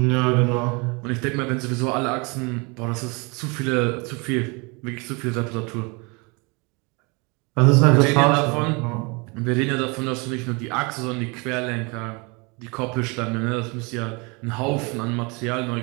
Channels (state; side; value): quieter; left; 29.6 dB